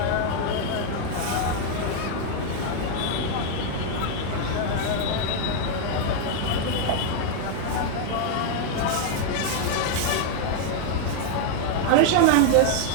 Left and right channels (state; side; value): different; both; correlation 0.00